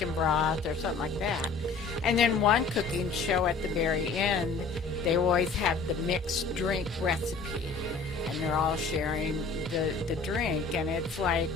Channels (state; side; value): quieter; right; 4.4 dB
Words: broth or something like that. And then one cooking show at the very end, they always have the mixed drink recipe, and they're all sharing the drink. And it's like,